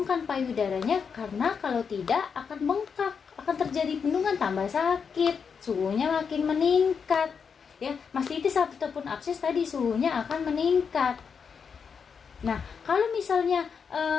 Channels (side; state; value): right; quieter; 6.2 dB